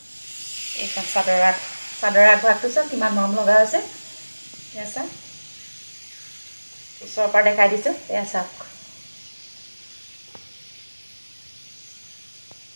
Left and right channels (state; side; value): inverted; both; correlation -1.00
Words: এইখন চাদৰ আগভাগটো চাওক কিমান মৰম লগা হৈছে। এয়া চাওক ওচৰৰ পৰা দেখাই দিছোঁ, এয়া চাওক